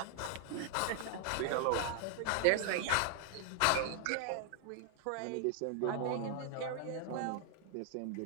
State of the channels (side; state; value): both; different; correlation 0.00